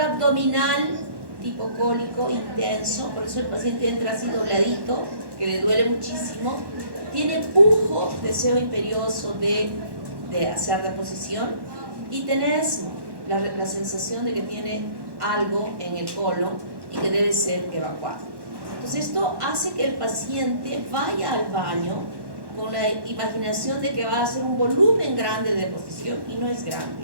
tipo cólico intenso, por eso el paciente entra así dobladito, que le duele muchísimo, tiene pujo, deseo imperioso de hacer deposición, y tenés la sensación de que tiene algo en el colon y que debe ser evacuado. Entonces esto hace que el paciente vaya al baño con la imaginación de que va a hacer un volumen grande de deposición, y no es grande,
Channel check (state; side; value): late; left; 1.1 ms